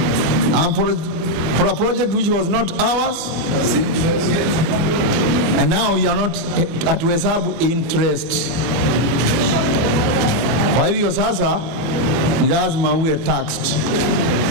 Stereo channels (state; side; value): late; left; 24 ms